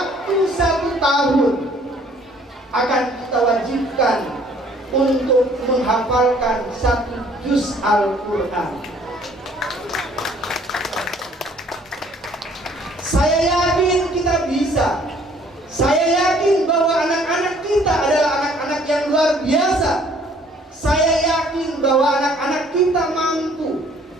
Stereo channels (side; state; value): both; normal; correlation 0.59